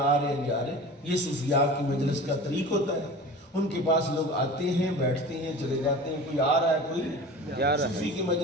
رہے ہیں جا رہے ہیں. یہ صوفیاء کی مجلس کا طریق ہوتا ہے. ان کے پاس لوگ آتے ہیں, بیٹھتے ہیں, چلے جاتے ہیں. کوئی آ رہا ہے, کوئی صوفی کی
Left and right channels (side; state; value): both; normal; correlation 0.37